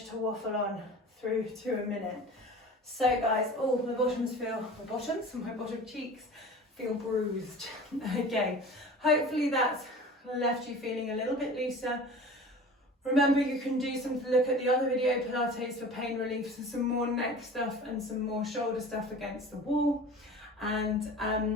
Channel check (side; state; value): both; normal; correlation 0.39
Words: to waffle on through to a minute. So guys, my bottom cheeks feel bruised. Okay, hopefully that's left you feeling a little bit looser. Remember, you can look at the other video, Pilates for pain relief, some more neck stuff and some more shoulder stuff against the wall. And